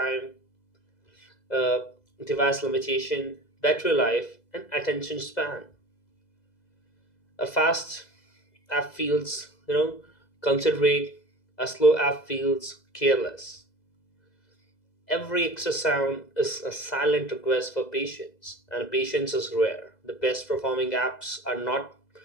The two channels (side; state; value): right; late; 2.0 ms